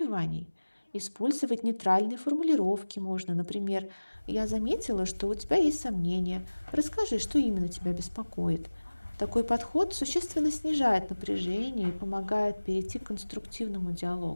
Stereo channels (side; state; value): both; inverted; correlation -1.00